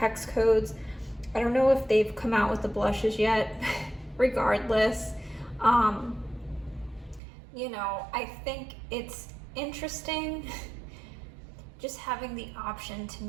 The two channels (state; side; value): drops out; left; at 7.2 s